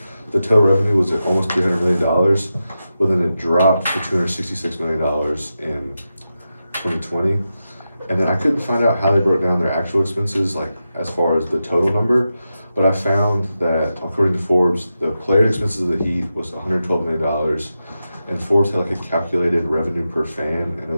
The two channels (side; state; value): both; inverted; correlation -0.90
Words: the total revenue was at almost $300 million, but then it dropped to $266 million in 2020. And then I couldn't find out how they broke down their actual expenses, like as far as the total number, but I found that according to Forbes, the player expenses of the Heat was $112 million, and Forbes had like a calculated revenue per fan, and it